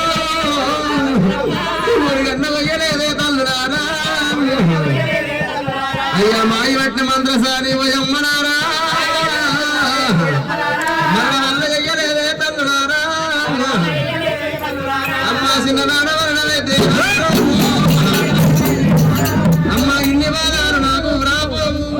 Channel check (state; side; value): identical; both; correlation 1.00